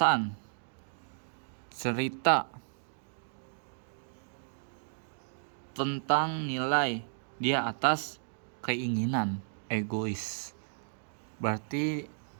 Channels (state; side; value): silent; left; digital silence